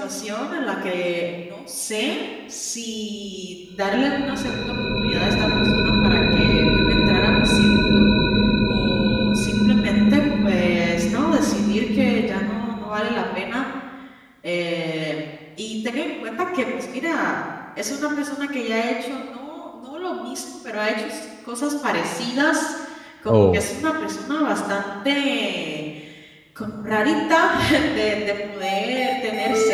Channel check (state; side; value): identical; both; correlation 1.00